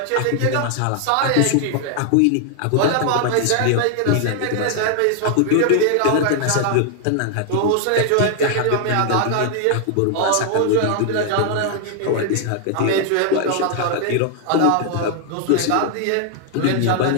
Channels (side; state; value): both; different; correlation 0.00